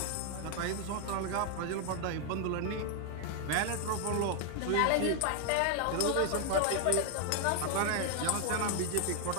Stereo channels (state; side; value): different; both; correlation 0.00